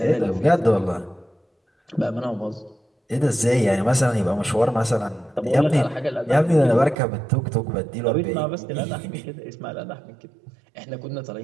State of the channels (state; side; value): drops out; left; at 7.0 s